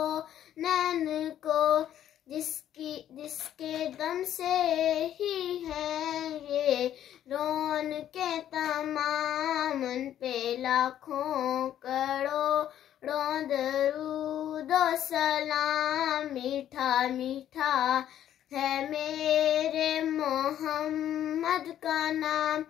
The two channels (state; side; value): quieter; right; 11.1 dB